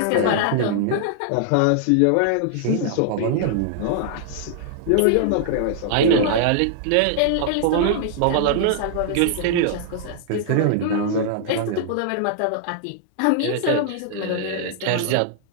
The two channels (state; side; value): different; both; correlation -0.01